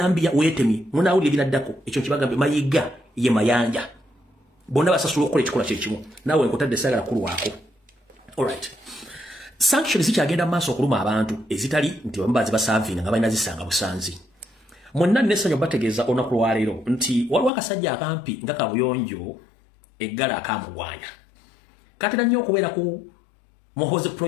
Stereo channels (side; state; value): right; drops out; at 17.5 s